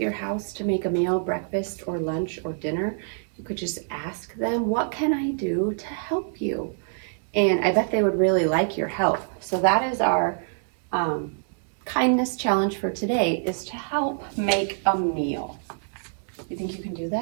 house to make a meal, breakfast or lunch or dinner? You could just ask them, what can I do to help you? And I bet they would really like your help. So that is our kindness challenge for today, is to help make a meal. You think you can do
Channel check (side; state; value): left; silent; digital silence